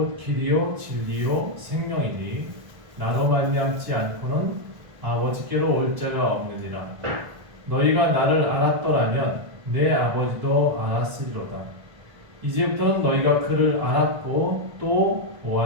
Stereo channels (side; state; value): left; late; 1.5 ms